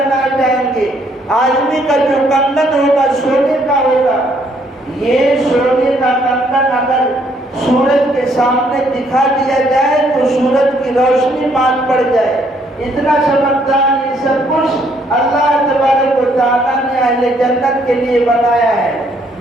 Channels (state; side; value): normal; both; correlation 0.68